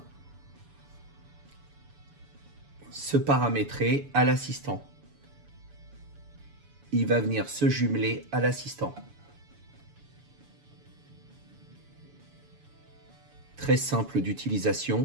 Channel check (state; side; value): late; left; 7.0 ms